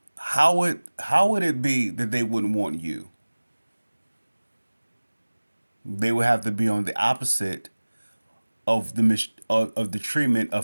How would it be that they wouldn't want you? They would have to be on the opposite of the treatment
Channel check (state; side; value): inverted; both; correlation -1.00